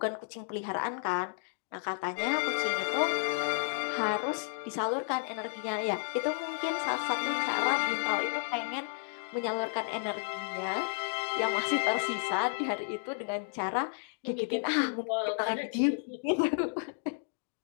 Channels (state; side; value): silent; right; digital silence